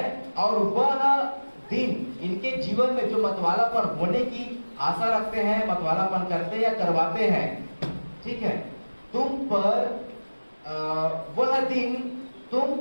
और वह दिन इनके जीवन में जो मतवालापन होने की आशा रखते हैं, मतवालापन करते या करवाते हैं, ठीक है, तुम पर वह दिन तुम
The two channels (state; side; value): inverted; both; correlation -1.00